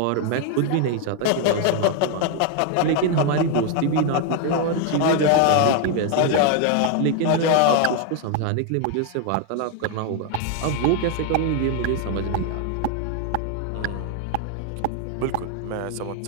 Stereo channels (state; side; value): different; both; correlation 0.01